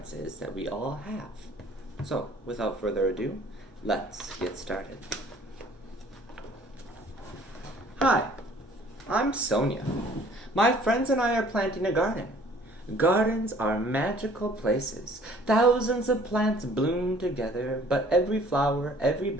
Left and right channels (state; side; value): normal; both; correlation 0.55